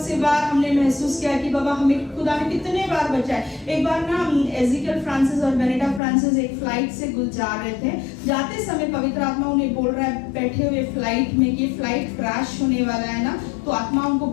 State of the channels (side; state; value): right; drops out; at 6.0 s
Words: से बार हमने महसूस किया कि बाबा हमें खुदा ने कितने बार बचाए। एक बार ना एजिकल फ्रांसिस और बेनेटा फ्रांसिस एक फ्लाइट से जा रहे थे। जाते समय पवित्र आत्मा उन्हें बोल रहा है बैठे हुए फ्लाइट में कि फ्लाइट क्रैश होने वाला है ना, तो आत्मा उनको